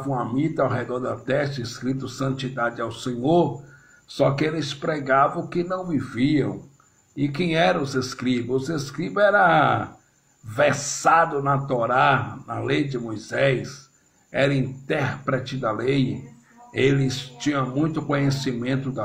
a mita ao redor da testa, escrito santidade ao Senhor, só que eles pregavam o que não viviam. E quem eram os escribas? Os escribas eram versado na Torá, na lei de Moisés, era intérprete da lei, eles tinham muito conhecimento da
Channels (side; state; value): both; identical; correlation 1.00